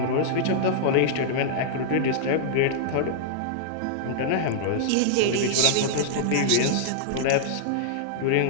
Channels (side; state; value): both; different; correlation -0.01